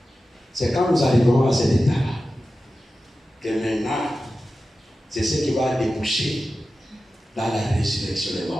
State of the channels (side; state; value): both; normal; correlation 0.93